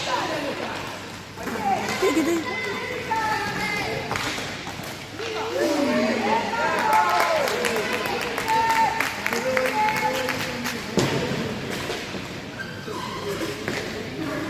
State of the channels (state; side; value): identical; both; correlation 1.00